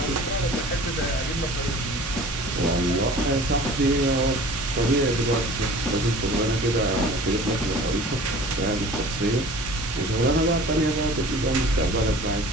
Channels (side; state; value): both; normal; correlation 0.44